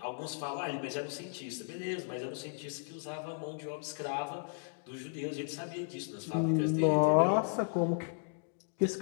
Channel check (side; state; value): right; silent; digital silence